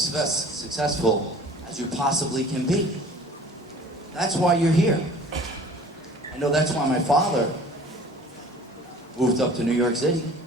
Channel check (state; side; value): normal; both; correlation 0.47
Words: as you possibly can be. That's why you're here. I know that's why my father moved up to New York City,